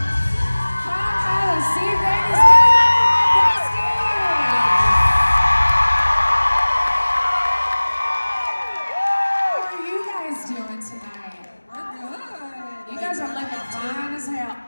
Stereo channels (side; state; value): both; inverted; correlation -1.00